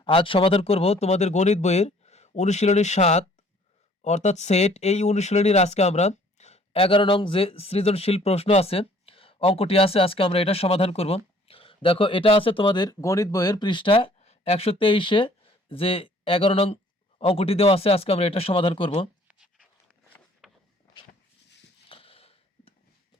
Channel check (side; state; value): both; normal; correlation 0.57